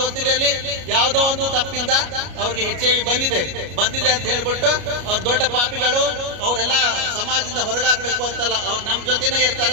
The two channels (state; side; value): late; left; 33 ms